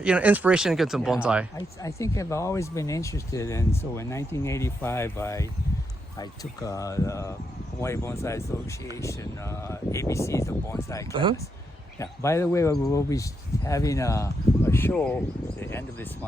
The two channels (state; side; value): normal; both; correlation 0.82